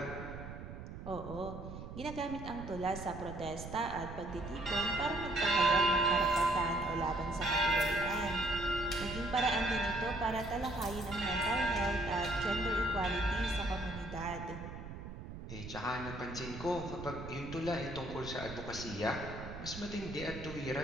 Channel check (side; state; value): right; noise; rumble, 10 dB below the sound